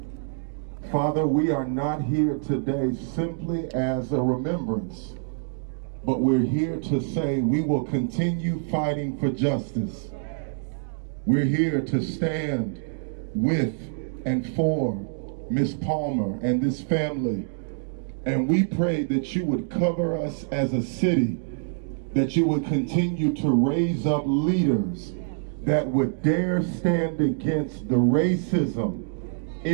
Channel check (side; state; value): left; silent; digital silence